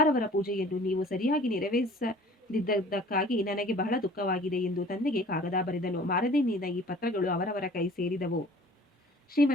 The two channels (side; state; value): both; normal; correlation 0.48